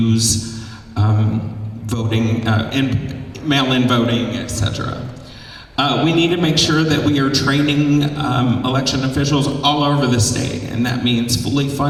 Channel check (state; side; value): identical; both; correlation 1.00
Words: voting and mail-in voting, etc. We need to make sure that we are training election officials all over the state, and that means fully